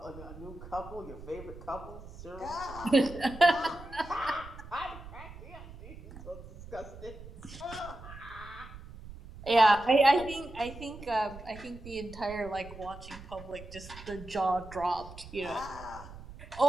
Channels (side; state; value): right; noise; rumble, 15 dB below the sound